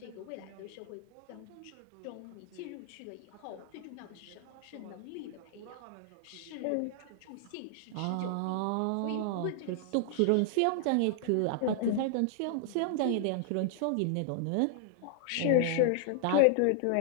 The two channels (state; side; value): different; both; correlation -0.01